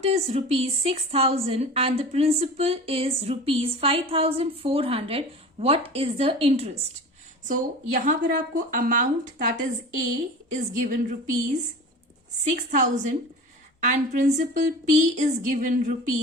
is rupees 6,000 and the principal is rupees 5,400, what is the interest? So यहाँ पर आपको amount that is A is given rupees 6,000 and principal P is given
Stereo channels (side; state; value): both; normal; correlation 0.35